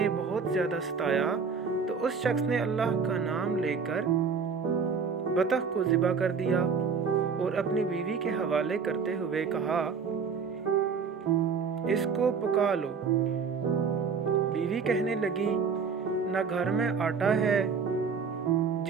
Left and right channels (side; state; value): left; quieter; 5.8 dB